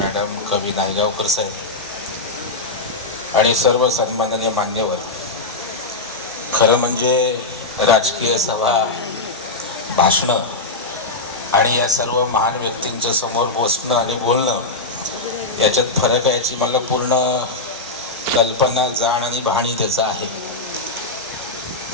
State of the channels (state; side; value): quieter; right; 3.2 dB